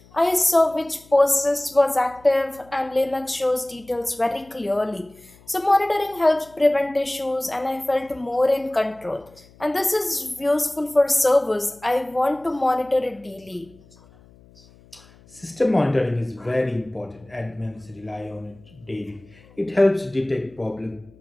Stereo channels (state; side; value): noise; left; hum, 26 dB below the sound